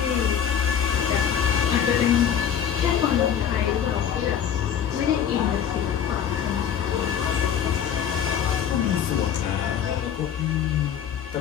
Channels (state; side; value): quieter; right; 8.8 dB